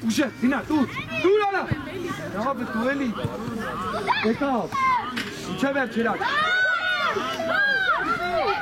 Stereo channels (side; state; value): both; identical; correlation 1.00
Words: Uşa, Dina, dur ala. Ne yapı tu eli? Vekal. Uçaver çırak.